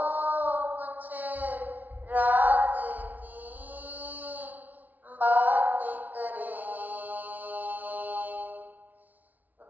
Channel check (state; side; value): late; left; 0.078 ms